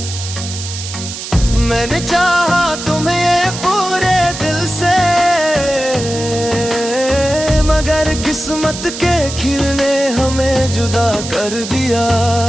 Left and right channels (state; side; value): noise; right; hiss, 9 dB below the sound